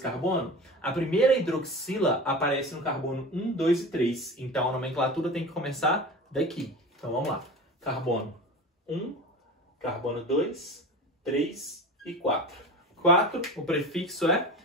carbono, a primeira hidroxila aparece no carbono 1, 2 e 3. Então, a nomenclatura tem que começar daqui. Então, vamos lá. Carbono 1, carbono 2, 3 e 4. 4, o prefixo é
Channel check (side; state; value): both; normal; correlation 0.32